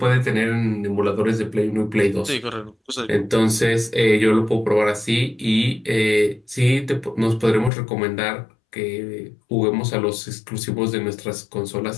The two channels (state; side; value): drops out; right; at 7.7 s